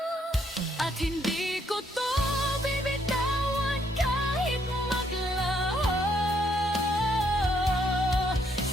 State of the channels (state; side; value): normal; both; correlation 0.71